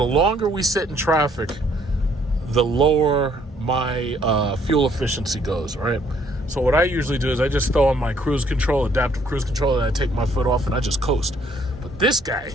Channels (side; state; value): both; normal; correlation 0.65